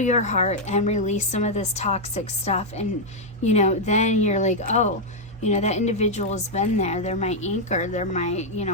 heart and release some of this toxic stuff. And, then you're like, oh, that individual has been there. They're my anchor. They're my,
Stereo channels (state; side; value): normal; both; correlation -0.02